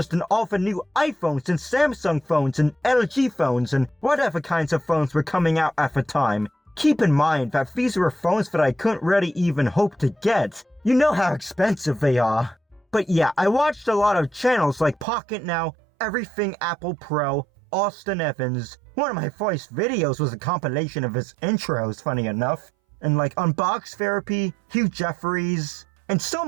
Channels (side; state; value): left; drops out; at 15.1 s